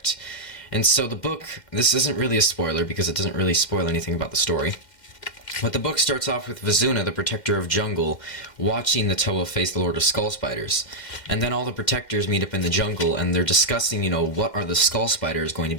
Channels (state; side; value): late; right; 2.1 ms